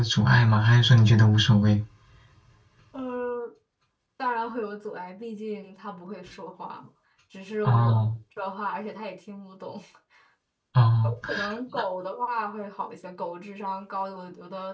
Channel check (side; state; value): both; identical; correlation 1.00